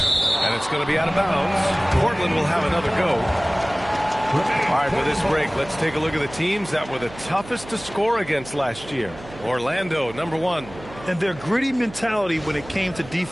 And it's going to be out of bounds. Portland will have another go. All right, for this break, let's take a look at the teams that were the toughest to score against last year. Orlando, number 1. And their gritty mentality when it came to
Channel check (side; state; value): right; noise; hum, 17 dB below the sound